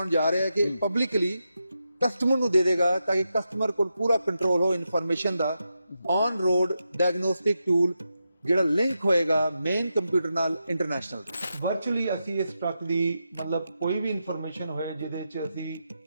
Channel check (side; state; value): both; inverted; correlation -0.87